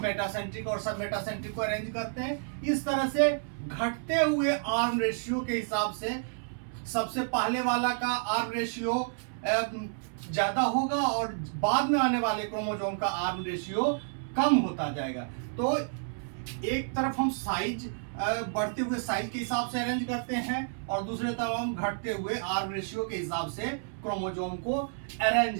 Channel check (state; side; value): silent; left; 58 dB below the other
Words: मेटासेंट्रिक और सब मेटासेंट्रिक को अरेंज करते हैं। इस तरह से घटते हुए आर्म रेशियो के हिसाब से सबसे पहले वाला का आर्म रेशियो ज्यादा होगा और बाद में आने वाले क्रोमोसोम का आर्म रेशियो कम होता जाएगा। तो एक तरफ हम साइज बढ़ते हुए साइज के हिसाब से अरेंज करते हैं और दूसरे तरफ हम घटते हुए आर रेशियो के हिसाब से क्रोमोजोम को अरेंज